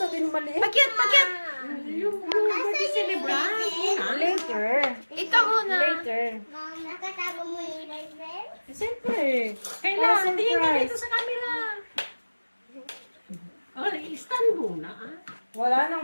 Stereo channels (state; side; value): inverted; both; correlation -1.00